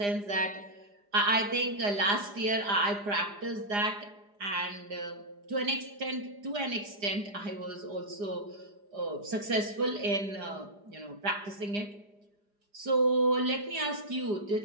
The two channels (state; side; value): late; left; 4.9 ms